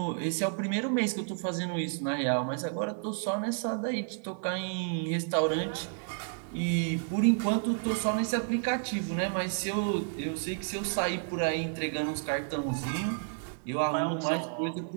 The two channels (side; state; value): left; silent; 57 dB below the other